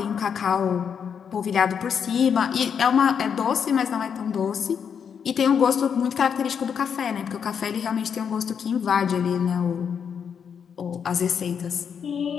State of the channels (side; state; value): right; quieter; 7.3 dB